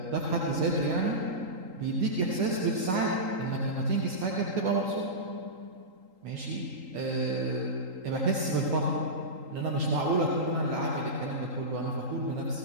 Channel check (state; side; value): late; left; 3.8 ms